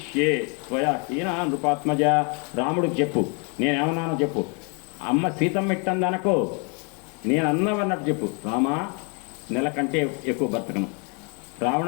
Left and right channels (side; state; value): right; quieter; 35.4 dB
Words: త్వయా హీనా నృపాత్మజ. రాముడికి చెప్పు, నేనేమన్నానో చెప్పు. అమ్మ సీతమ్మ ఇట్టందనకో, నేను అన్నవన్నట్టు చెప్పు. రామా నెల కంటే ఎక్కువ బతకను.